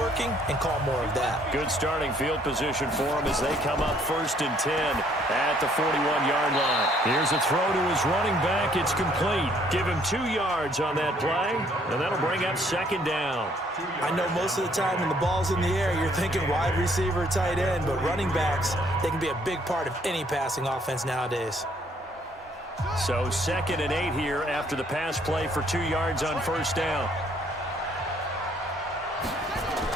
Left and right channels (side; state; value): both; normal; correlation 0.64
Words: and call more of that. Good starting field position for them as they come up 1st and 10 at the 41-yard line. Here's a throw to his running back. It's complete. Give him 2 yards on that play, and that'll bring up 2nd down. I know most of the time when the ball's in the air, you're thinking wide receiver, tight end, but running backs, they can be a big part of any passing offense nowadays. So 2nd and 8 here after the pass play for 2 yards on 1st down.